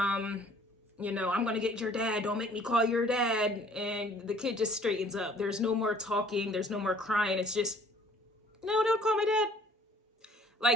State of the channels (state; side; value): normal; both; correlation 0.55